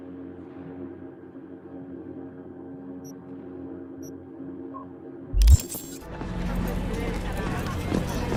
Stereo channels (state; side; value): identical; both; correlation 1.00